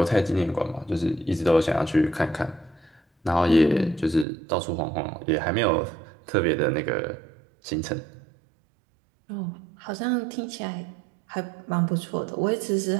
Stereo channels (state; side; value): drops out; left; at 4.2 s